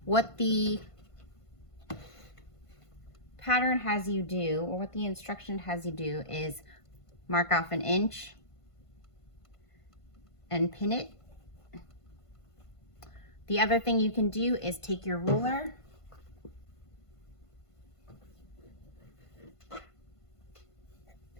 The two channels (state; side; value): late; right; 1.5 ms